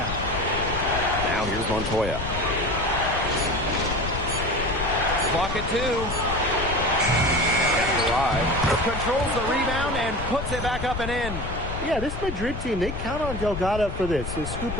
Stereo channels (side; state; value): left; noise; rumble, 6 dB below the sound